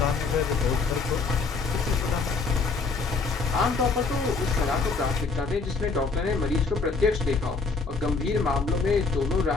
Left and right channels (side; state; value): right; quieter; 4.3 dB